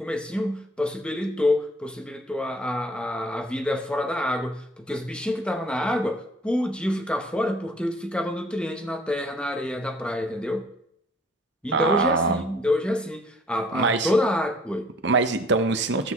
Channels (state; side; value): normal; both; correlation 0.56